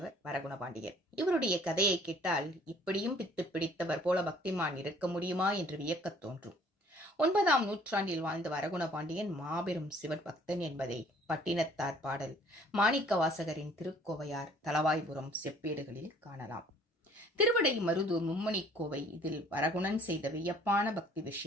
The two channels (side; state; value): both; normal; correlation 0.56